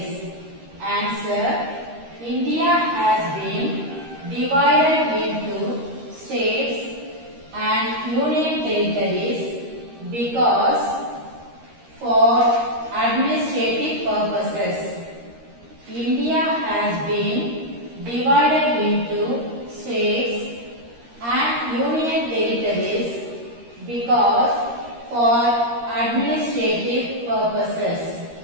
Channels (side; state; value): left; late; 13 ms